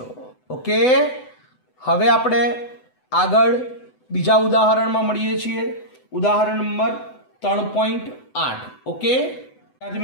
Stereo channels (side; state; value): right; late; 7.9 ms